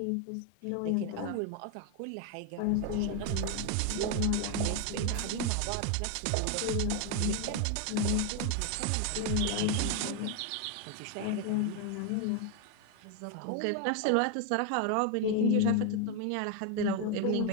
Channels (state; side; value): different; both; correlation 0.01